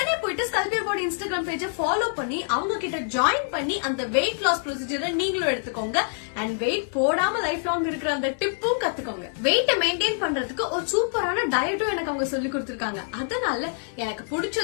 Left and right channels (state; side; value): silent; right; digital silence